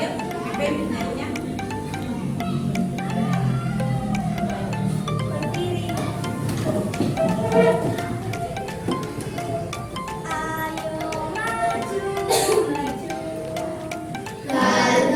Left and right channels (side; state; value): both; identical; correlation 1.00